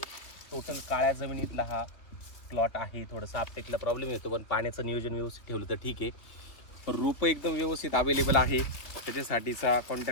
टोटल काळ्या जमिनीतला हा प्लॉट आहे. थोडंसं आपटेकला प्रॉब्लेम येतो, पण पाण्याचं नियोजन व्यवस्थित ठेवलं तर ठीक आहे. रोपं एकदम व्यवस्थित अवेलेबल आहे. त्याच्यासाठीचा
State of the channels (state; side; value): late; right; 2.7 ms